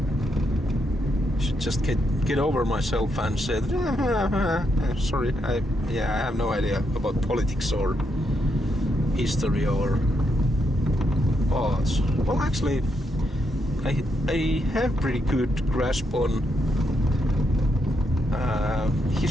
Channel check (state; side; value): normal; both; correlation 0.80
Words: Should just get over myself and say, sorry, I have no idea about politics or history or arts. Well, actually, I have pretty good grasp on